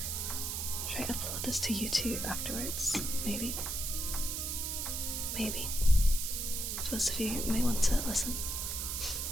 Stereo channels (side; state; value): right; noise; hiss, 2 dB below the sound